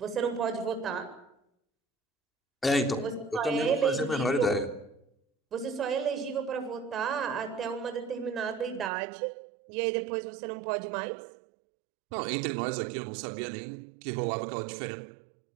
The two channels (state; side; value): drops out; left; at 8.9 s